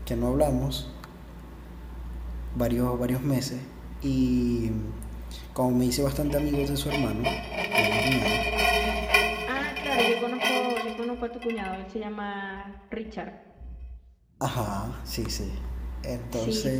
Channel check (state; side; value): identical; both; correlation 1.00